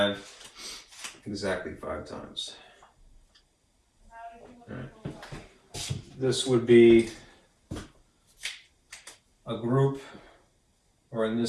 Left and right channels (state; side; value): identical; both; correlation 1.00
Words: exactly 5 times. Right. This would be a group, or in